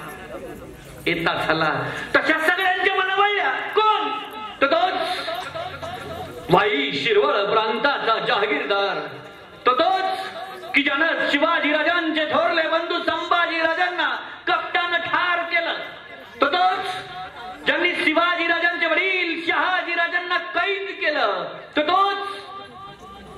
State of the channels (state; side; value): identical; both; correlation 1.00